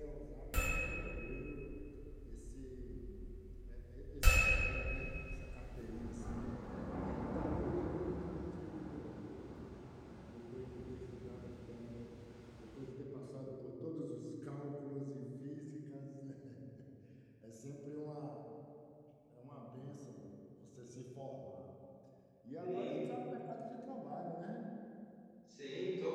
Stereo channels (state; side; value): identical; both; correlation 1.00